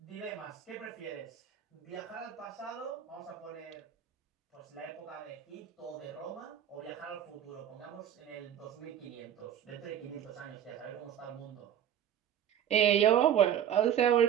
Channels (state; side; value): quieter; left; 9.9 dB